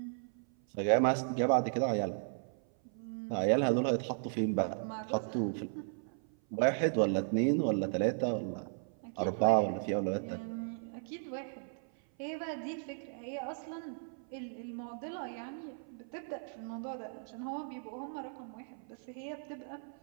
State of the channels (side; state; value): left; silent; 54 dB below the other